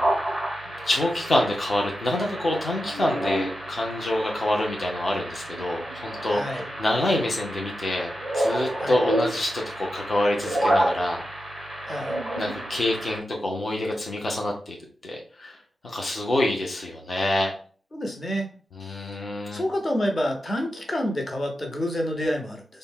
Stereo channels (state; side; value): normal; both; correlation 0.90